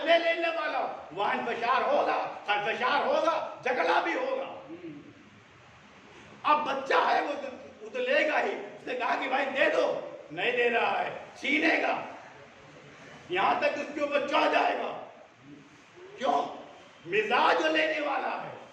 लेने वाला हो, वहां इंफशार होगा, झगड़ा भी होगा। अब बच्चा है वो तो लेगा ही। उसने कहा कि भाई दे दो, नहीं दे रहा है, छीनेगा, यहां तक उसके ऊपर चढ़ जाएगा। क्यों? मिजाज जो लेने वाला है,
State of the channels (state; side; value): identical; both; correlation 1.00